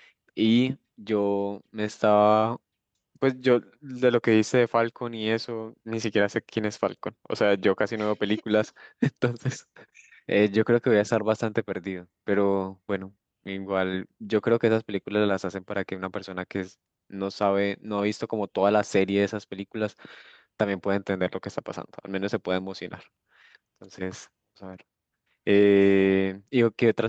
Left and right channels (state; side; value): identical; both; correlation 1.00